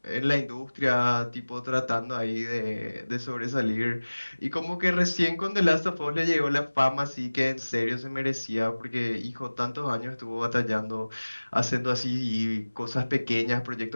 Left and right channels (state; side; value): inverted; both; correlation -1.00